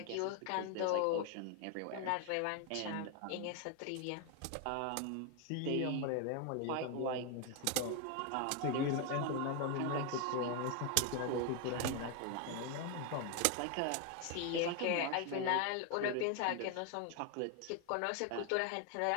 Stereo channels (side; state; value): both; different; correlation 0.01